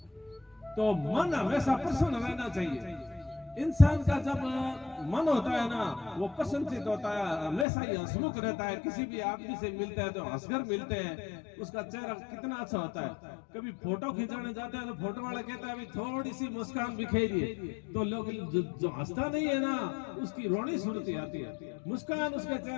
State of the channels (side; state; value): right; drops out; at 7.7 s